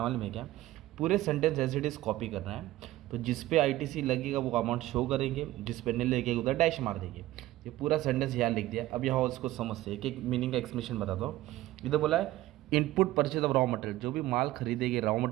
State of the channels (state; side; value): quieter; left; 16.2 dB